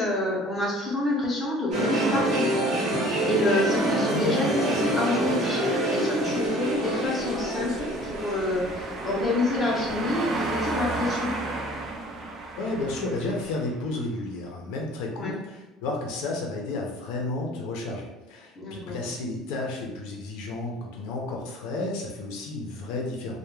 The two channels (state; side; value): normal; both; correlation 0.50